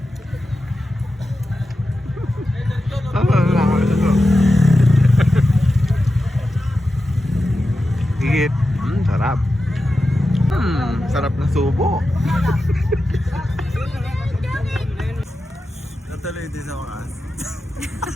Higit. Sarap. Sarap na subo. Natuloy din sa oras.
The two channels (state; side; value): normal; both; correlation 0.91